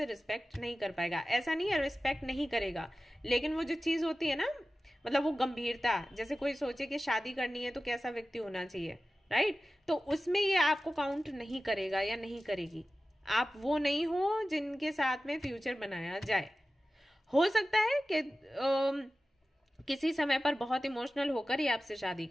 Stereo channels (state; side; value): normal; both; correlation 0.95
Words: रिस्पेक्ट नहीं कर पाएगा। ऐसा नहीं है रिस्पेक्ट नहीं करेगा, लेकिन वो जो चीज होती है ना, मतलब वो गंभीरता, जैसे कोई सोचे कि शादी करनी है तो कैसा व्यक्ति होना चाहिए, राइट, तो उसमें ये आपको काउंट नहीं करेगा या नहीं करेगी। आप वो नहीं हो जिनके साथ में फ्यूचर बनाया जाए। हो सकता है कि किसी समय पर बहुत इमोशनल होकर ये आपसे शादी